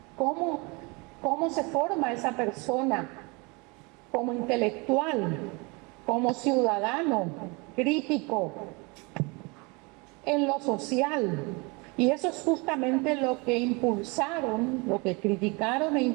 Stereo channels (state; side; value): quieter; left; 28.5 dB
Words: cómo se forma esa persona como intelectual, como ciudadano, crítico, en lo social. Y eso es justamente lo que impulsaron, lo que criticaron e